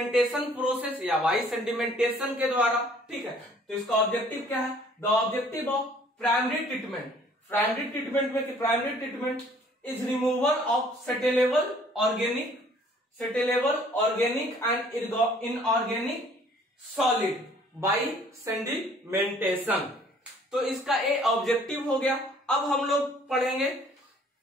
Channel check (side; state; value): both; normal; correlation 0.57